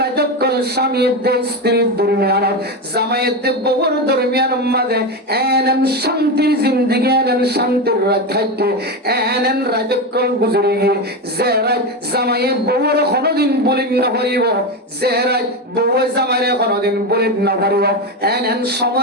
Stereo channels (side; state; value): both; normal; correlation 0.15